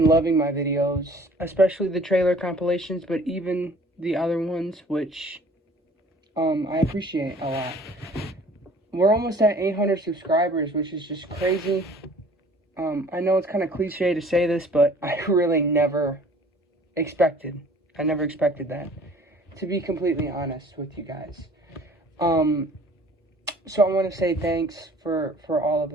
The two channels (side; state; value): both; normal; correlation 0.51